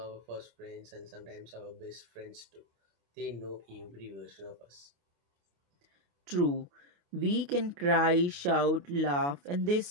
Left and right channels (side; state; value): left; late; 28 ms